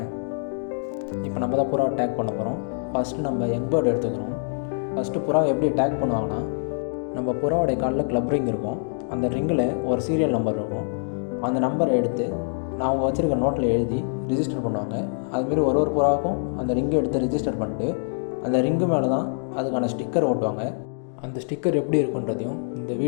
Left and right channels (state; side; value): silent; right; digital silence